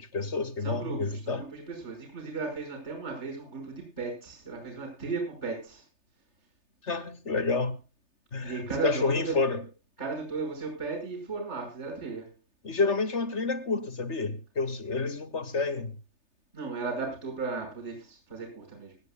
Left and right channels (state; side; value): late; right; 3.3 ms